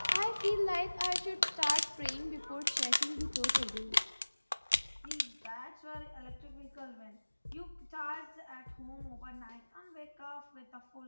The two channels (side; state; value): both; inverted; correlation -1.00